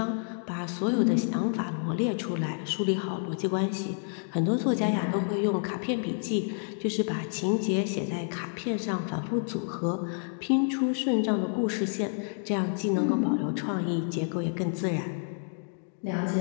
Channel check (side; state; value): right; silent; 59 dB below the other